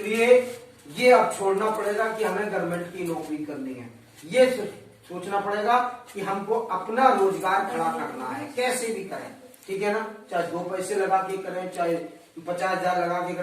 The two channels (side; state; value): both; identical; correlation 1.00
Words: ये अब छोड़ना पड़ेगा कि हमें गवर्नमेंट की नौकरी करनी है। ये सोचना पड़ेगा कि हमको अपना रोजगार खड़ा करना है, कैसे भी करें, ठीक है ना। चाहे 2 पैसे लगा के करें, चाहे 50,000 लगा के